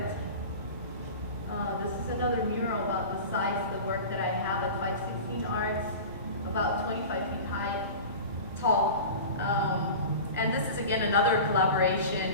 This is another mural about the size of the work that I have at 516 Arts, about 25 feet high, tall. And this is again another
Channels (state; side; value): inverted; both; correlation -0.34